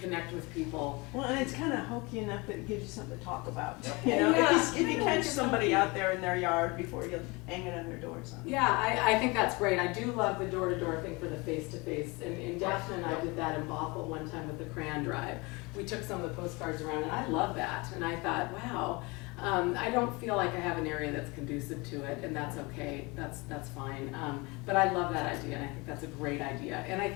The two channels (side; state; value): right; quieter; 26.0 dB